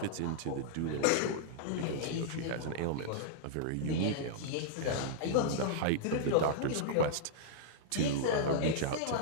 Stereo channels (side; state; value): both; different; correlation -0.01